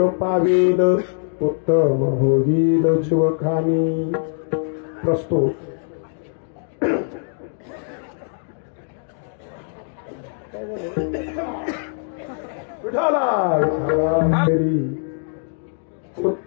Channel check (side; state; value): right; silent; 64 dB below the other